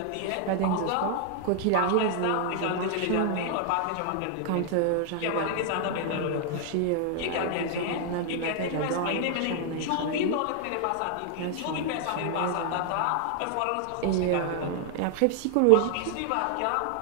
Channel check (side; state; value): both; different; correlation 0.00